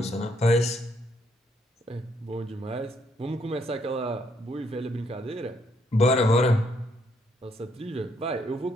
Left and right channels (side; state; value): both; normal; correlation 0.72